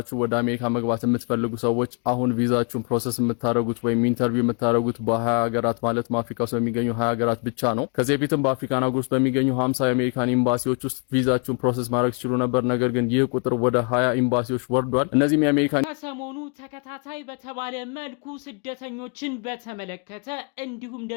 ወደ አሜሪካ መግባት የምትፈልጉ ሰዎች አሁን ቪዛችሁን ፕሮሰስ የምታደርጉት ወይም ኢንተርቪው የምታደርጉት በ20 ሀገራት ማለት አፍሪካ ውስጥ በሚገኙ 20 ሀገራት ብቻ ነው። ከዚህ በፊትም በአፍሪካን ሀገር ውስጥ በሚገኙ 50 የአሜሪካን ኤምባሲዎች ውስጥ ቪዛችሁን ፕሮሰስ ማድረግ ትችሉ ነበር። ነገር ግን ይህ ቁጥር ወደ 20 ኤምባሲዎች ወርዷል። እነዚህም የአሜሪካን ከሰሞኑ ተከታታይ በተባለ መልኩ ስደተኞችን በተመለከተ እንዲሁም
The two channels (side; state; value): right; quieter; 39.8 dB